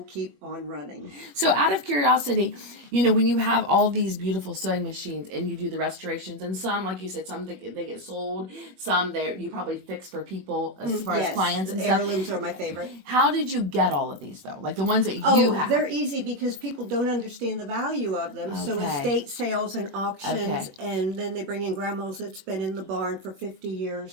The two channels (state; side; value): late; left; 21 ms